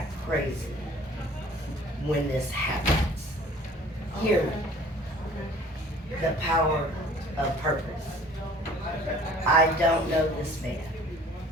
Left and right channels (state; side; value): normal; both; correlation 0.51